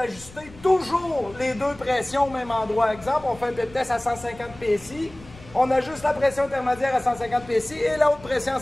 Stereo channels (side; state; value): left; noise; rumble, 20 dB below the sound